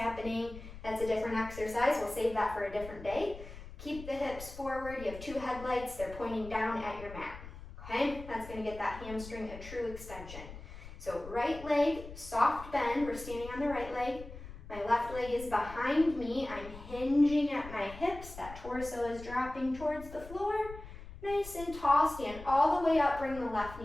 That's a different exercise. We'll save that for a different day. Keep the hips forward. You have 2 headlights. They're pointing down at your mat. Okay, that's going to get that hamstring a true extension. So right leg, soft bend. We're standing on the right leg. My left leg is behind me. I'm hinging at my hips. That torso is dropping towards the floor. Nice and tall. Stand all the way up. Bring the left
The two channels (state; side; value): noise; left; rumble, 14 dB below the sound